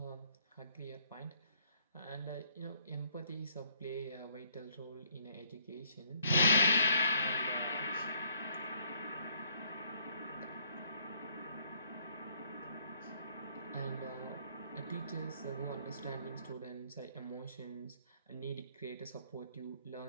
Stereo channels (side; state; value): both; inverted; correlation -0.66